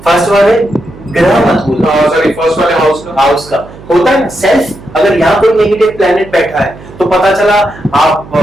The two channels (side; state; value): right; noise; hum, 19 dB below the sound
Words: फर्स्ट वाले ग्रह मत बोलो, सॉरी फर्स्ट वाले हाउस का होता है ना सेल्फ। अगर यहाँ कोई नेगेटिव प्लेनेट बैठा है तो पता चला